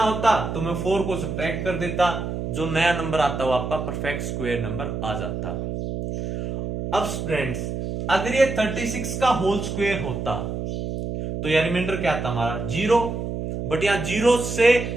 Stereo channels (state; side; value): noise; right; hum, 4 dB below the sound